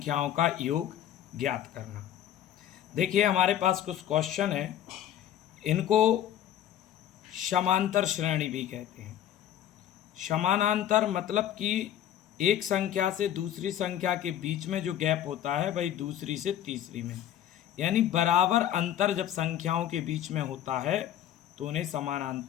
का योग ज्ञात करना। देखिए हमारे पास कुछ क्वेश्चन है, इनको समांतर श्रेणी भी कहते हैं। समानांतर मतलब कि एक संख्या से दूसरी संख्या के बीच में जो गैप होता है वही दूसरी से तीसरी में, यानी बराबर अंतर जब संख्याओं के बीच में होता है तो उन्हें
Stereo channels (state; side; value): quieter; right; 11.2 dB